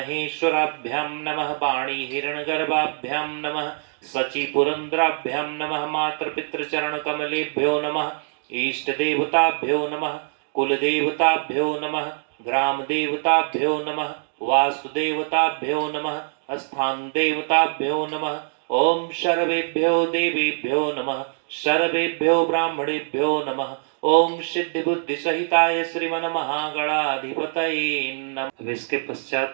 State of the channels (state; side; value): silent; left; digital silence